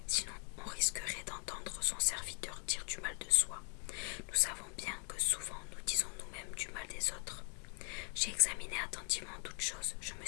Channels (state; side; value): quieter; right; 39.1 dB